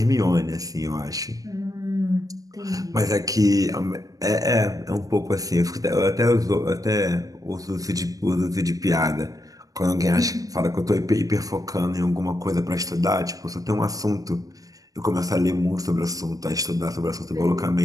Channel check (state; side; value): late; left; 0.17 ms